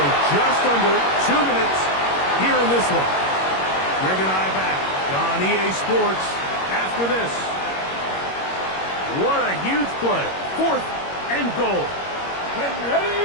just under 2 minutes here in this one. Greg and I back on EA Sports after this. What a huge play. Fourth and goal. Get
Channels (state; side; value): late; right; 21 ms